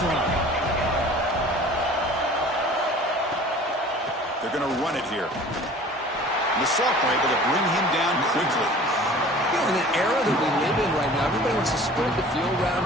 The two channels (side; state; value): both; normal; correlation 0.45